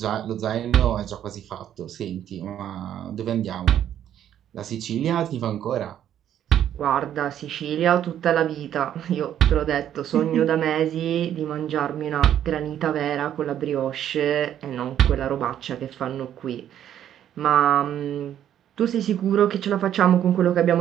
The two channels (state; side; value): quieter; left; 10.5 dB